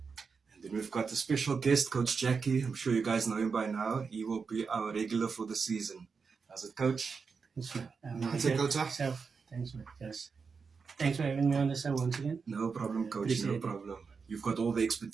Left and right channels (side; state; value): left; quieter; 5.3 dB